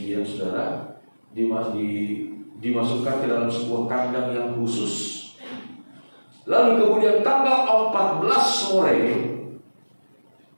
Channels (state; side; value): inverted; both; correlation -1.00